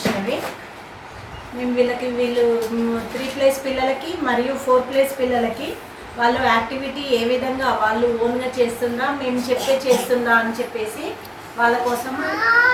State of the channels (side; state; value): both; identical; correlation 1.00